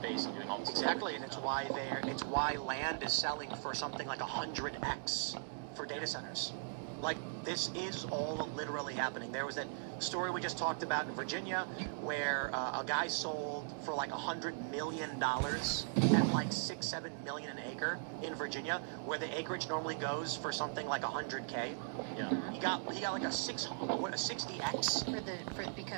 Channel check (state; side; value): silent; left; digital silence